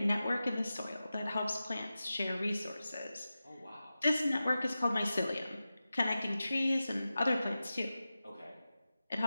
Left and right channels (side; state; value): both; inverted; correlation -0.94